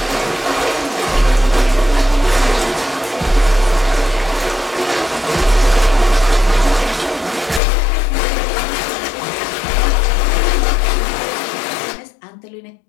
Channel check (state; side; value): drops out; right; at 7.6 s